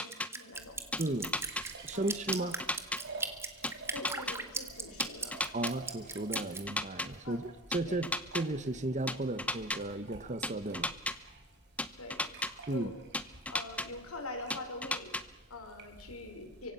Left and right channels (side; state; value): both; normal; correlation 0.32